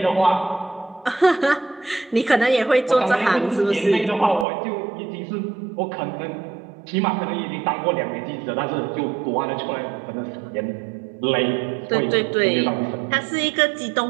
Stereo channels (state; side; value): drops out; left; at 4.5 s